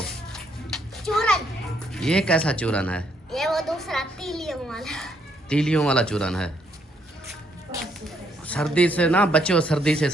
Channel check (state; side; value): normal; both; correlation 0.72